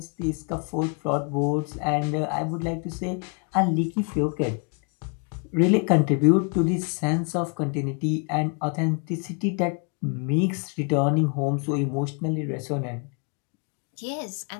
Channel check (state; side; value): quieter; right; 37.2 dB